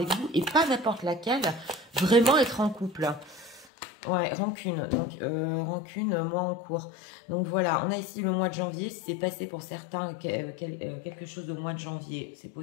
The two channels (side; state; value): right; drops out; at 3.7 s